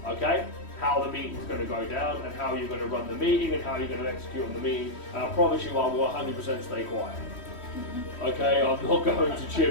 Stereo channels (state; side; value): late; right; 3.1 ms